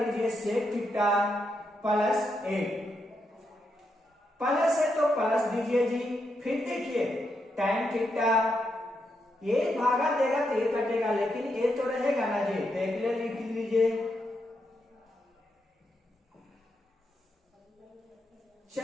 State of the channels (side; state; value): both; normal; correlation 0.82